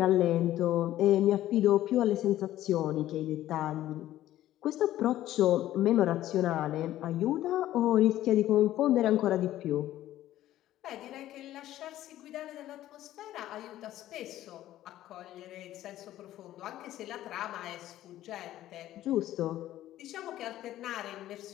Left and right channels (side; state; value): right; quieter; 13.7 dB